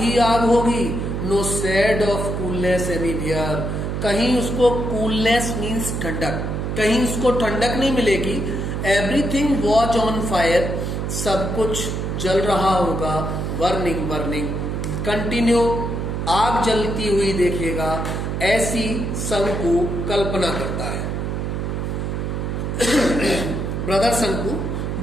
आग होगी। No shade of coolness anywhere, कहीं उसको कूलनेस मीन्स ठंडक, कहीं उसको ठंडक नहीं मिलेगी। एवरीथिंग वॉज ऑन फायर, सब कुछ जल रहा होगा। वर्निंग वर्निंग कंटिन्यू, आग जलती हुई देखेगा, ऐसी शंकु कल्पना करता है। ब्रदर शंकु,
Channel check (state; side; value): noise; right; hum, 2 dB below the sound